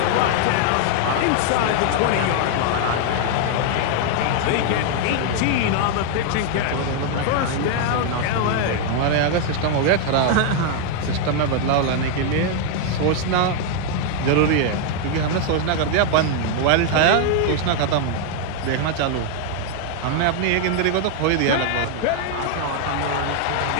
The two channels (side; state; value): both; different; correlation 0.00